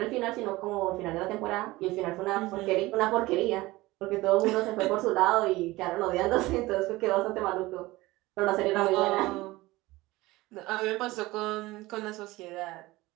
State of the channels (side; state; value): left; quieter; 19.6 dB